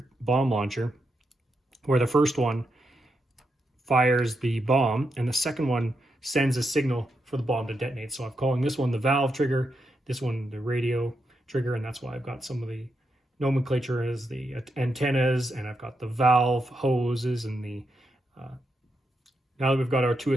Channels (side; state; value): both; normal; correlation 0.84